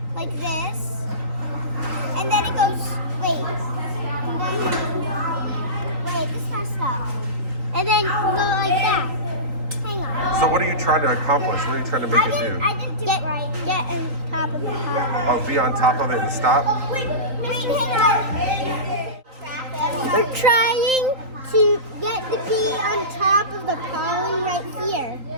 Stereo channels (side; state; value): left; late; 3.9 ms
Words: like this, and then it goes. Wait, this messed up. And then go like that. Hang on. So what are you trying to accomplish? What are you trying to make it do? I didn't do it right. Get on top of the pollen. Oh, be on top of it and stop? Wait, hang on. We're trying to get the bee on top of the pollen right here.